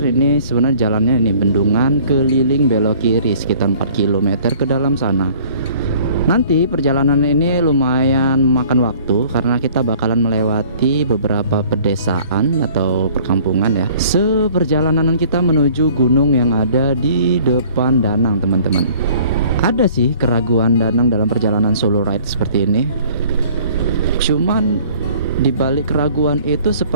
Ini sebenarnya jalannya ini bendungan keliling belok kiri sekitar 4 km ke dalam sana. Nanti perjalanan ini lumayan memakan waktu karena kita bakalan melewati beberapa pedesaan atau perkampungan ya. Seperjalanan kita menuju gunung yang ada di depan Danang teman-teman. Ada sih keraguan Danang dalam perjalanan solo ride seperti ini. Cuman di balik keraguan itu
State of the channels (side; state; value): both; inverted; correlation -0.53